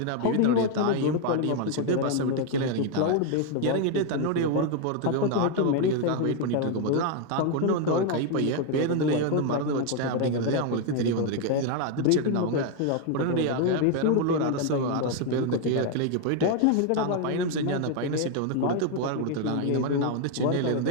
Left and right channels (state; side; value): different; both; correlation 0.01